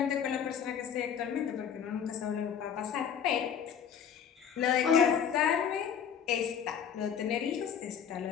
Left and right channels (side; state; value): right; quieter; 8.0 dB